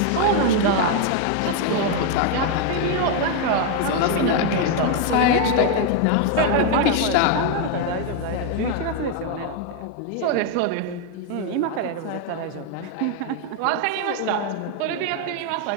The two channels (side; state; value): both; different; correlation 0.01